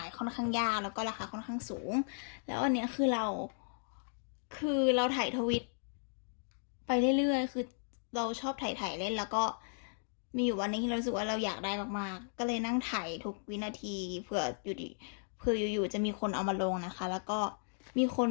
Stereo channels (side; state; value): right; silent; digital silence